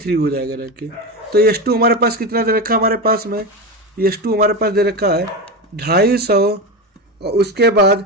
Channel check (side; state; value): both; normal; correlation 0.19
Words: हो जाएगा रखे। तो S2 हमारे पास कितना दे रखा हमारे पास में, S2 हमारे पास दे रखा है 250 और उसके बाद